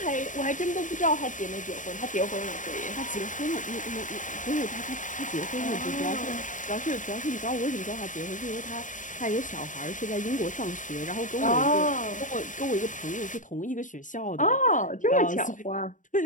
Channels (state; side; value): late; right; 0.37 ms